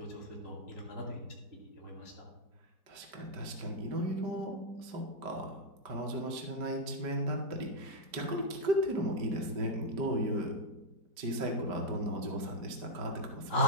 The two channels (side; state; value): left; late; 5.1 ms